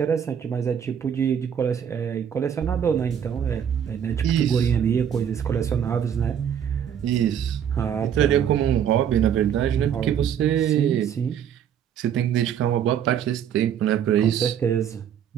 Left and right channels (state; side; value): quieter; left; 8.8 dB